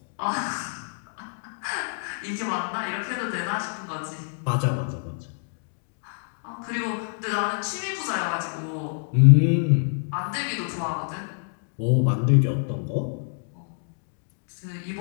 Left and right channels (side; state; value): right; silent; digital silence